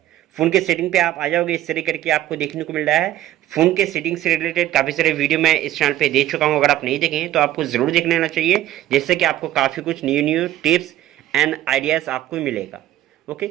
फोन के सेटिंग पे आप आ जाओगे, इस तरह करके आपको देखने को मिल रहा है। फोन के सेटिंग से रिलेटेड काफी सारे वीडियो मैं इस चैनल पे दे चुका हूं, अगर आप नहीं देखे हैं तो आपको जरूर देख लेना चाहिए, जिससे कि आपको काफी कुछ न्यू टिप्स एंड आइडियाज आपको मिलेगा। ओके,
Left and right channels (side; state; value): left; quieter; 13.5 dB